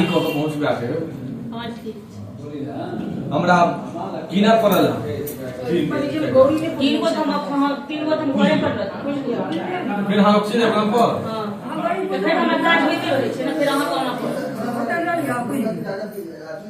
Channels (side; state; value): both; identical; correlation 1.00